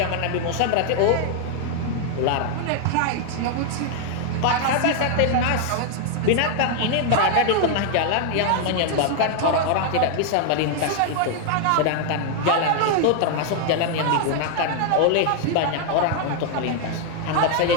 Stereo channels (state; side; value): different; both; correlation 0.00